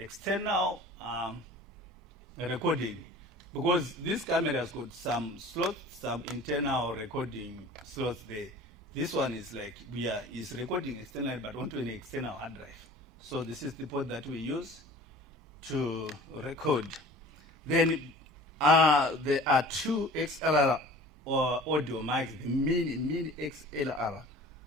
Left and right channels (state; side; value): normal; both; correlation 0.44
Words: external recording. Because this camera has got some slots, some internal recording slots there. This one is like, is recording externally, but onto an external hard drive. So this is the port that we use to record. Then there are two XLR audio mics, the mini XLR